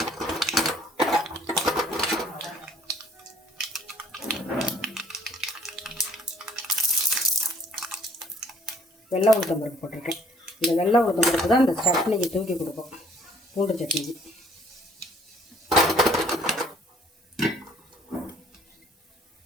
வெள்ளை உளுத்தம் பருப்பு போட்டிருக்கேன். இந்த வெள்ளை உளுத்தம் பருப்பு தான் இந்த சட்னிக்கு தூக்கி கொடுக்கும், பூண்டு சட்னிக்கு.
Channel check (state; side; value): normal; both; correlation 0.59